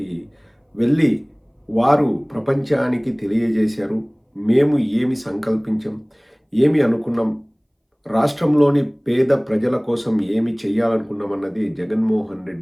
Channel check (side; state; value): both; identical; correlation 1.00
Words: వెళ్ళి వారు ప్రపంచానికి తెలియజేశారు. మేము ఏమి సంకల్పించాం, ఏమి అనుకున్నాం, రాష్ట్రంలోని పేద ప్రజల కోసం ఏమి చేయాలనుకున్నామన్నది జగన్మోహన్